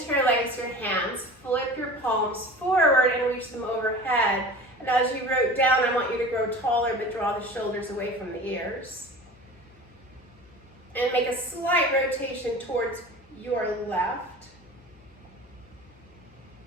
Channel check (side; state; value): left; noise; hum, 28 dB below the sound